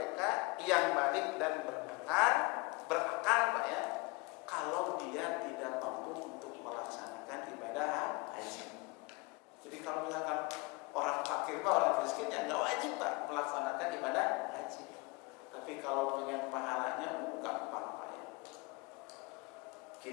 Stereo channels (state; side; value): quieter; right; 26.4 dB